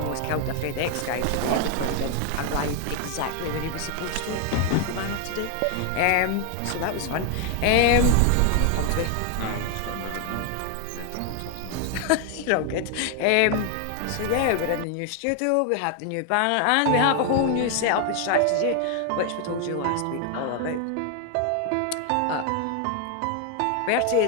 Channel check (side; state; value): both; different; correlation 0.01